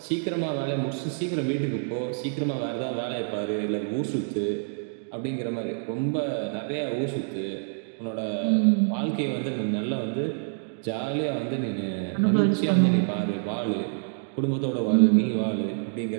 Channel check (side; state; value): left; silent; digital silence